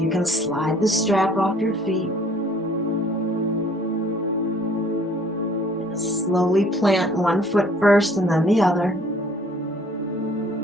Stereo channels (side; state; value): both; normal; correlation 0.57